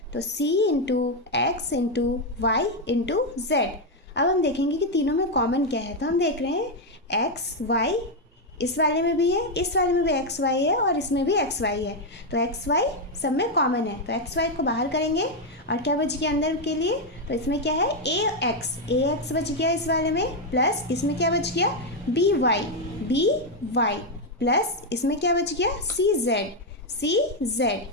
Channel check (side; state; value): both; normal; correlation 0.03